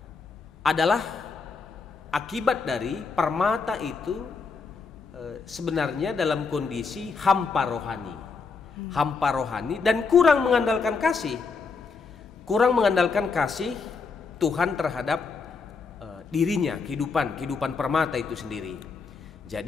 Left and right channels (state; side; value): quieter; right; 4.8 dB